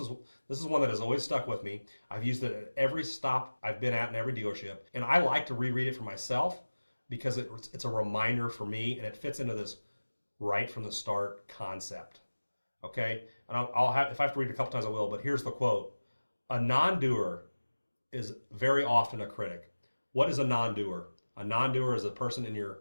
one that has always stuck with me. I've used it at every stop I've been at in every dealership, and I like to reread it for myself because it's a reminder for me, and it fits into this right from the start concept. Okay, and I'll have, if I have to read it a couple times, I will. But here's the quote: "A non-doer is very often a critic." What is a non-doer? A non-doer is a person in your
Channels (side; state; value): both; inverted; correlation -1.00